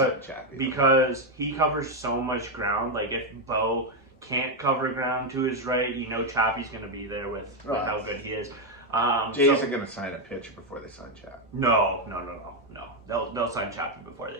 he covers so much ground. Like if Bo can't cover ground to his right, Chappie's going to be there with how good he is. Jays are going to sign a pitcher before they sign Chappie. No. They'll sign Chappie before they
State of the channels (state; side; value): normal; both; correlation 0.03